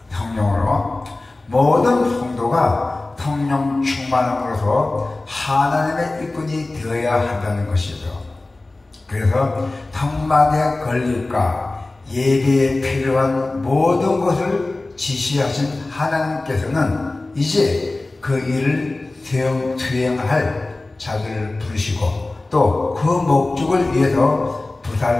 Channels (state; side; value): quieter; right; 3.0 dB